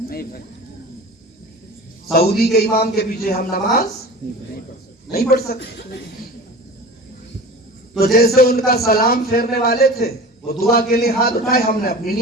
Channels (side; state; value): both; normal; correlation 0.36